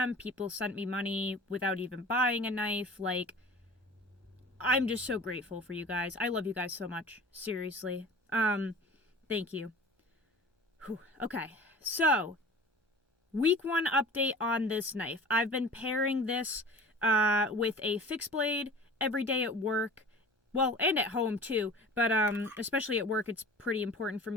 People sent me money without even buying a knife. I'm just so grateful for you guys. I love you guys so much. Seriously. Thank you. Whew. Okay. So, week 1 update on this knife. I've been pairing this with a fixed blade every day at work. Well, and at home too, but especially at work, it's pretty important for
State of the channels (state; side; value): normal; both; correlation 0.40